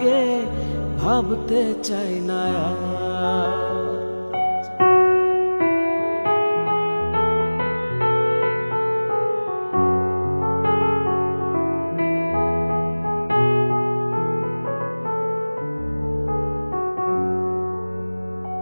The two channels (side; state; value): both; inverted; correlation -1.00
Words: ভাবতে চাই না।